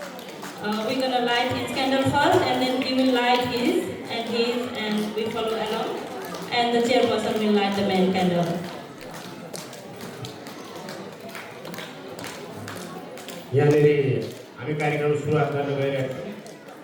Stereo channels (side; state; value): both; identical; correlation 1.00